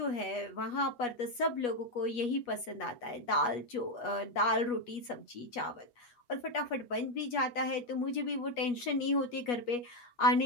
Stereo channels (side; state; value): right; late; 8.3 ms